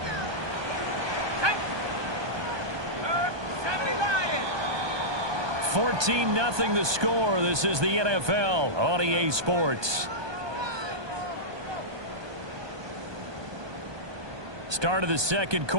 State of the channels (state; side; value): late; left; 1.2 ms